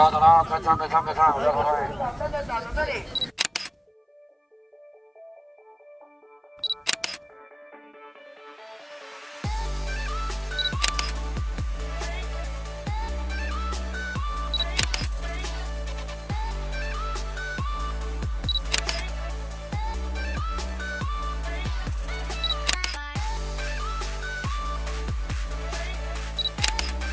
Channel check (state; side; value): identical; both; correlation 1.00